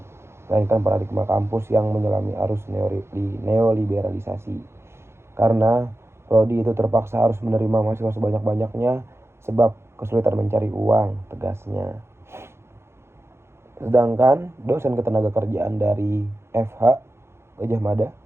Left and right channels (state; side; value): late; left; 0.12 ms